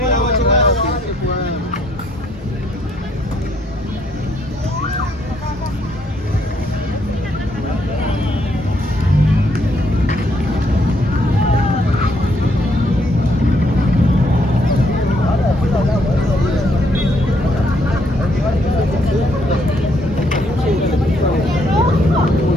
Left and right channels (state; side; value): normal; both; correlation 0.71